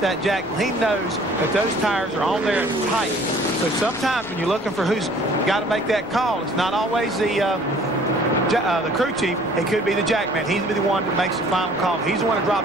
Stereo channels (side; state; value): both; normal; correlation 0.53